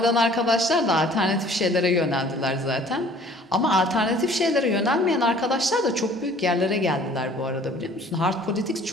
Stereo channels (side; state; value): both; normal; correlation 0.53